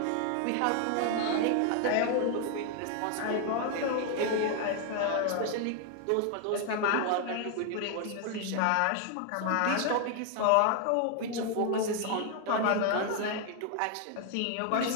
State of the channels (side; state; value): both; different; correlation 0.00